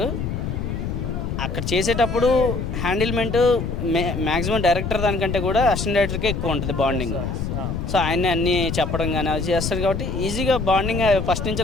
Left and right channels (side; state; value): left; noise; rumble, 3 dB below the sound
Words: అక్కడ చేసేటప్పుడు హ్యాండిల్మెంట్ మ్యాక్సిమం డైరెక్టర్ దానికంటే కూడా అసిస్టెంట్ డైరెక్టర్కే ఎక్కువ ఉంటుంది బాండింగ్. సో ఆయన అన్నీ చెప్పడం కానీ అది చేస్తారు కాబట్టి ఈజీగా బాండింగ్ ఫస్ట్ నుంచి